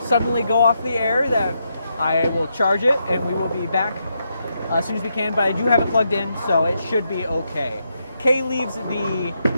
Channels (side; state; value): both; inverted; correlation -0.81